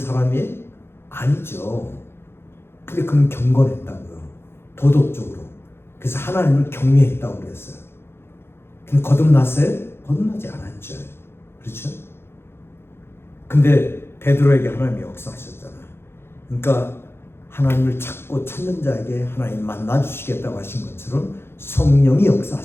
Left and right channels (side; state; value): right; late; 0.11 ms